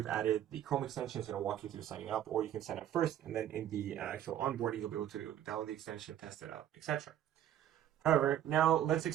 added the Chrome extension, it's going to walk you through signing up, or you can sign up first, and then in the actual onboarding, you'll be able to download the extension, test it out, etc. However, now let's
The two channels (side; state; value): left; quieter; 11.1 dB